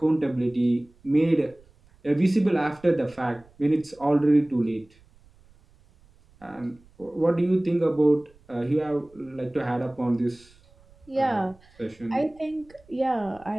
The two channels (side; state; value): right; noise; rumble, 28 dB below the sound